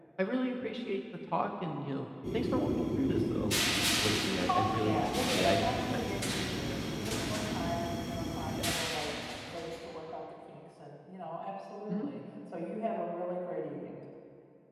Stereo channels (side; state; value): both; identical; correlation 1.00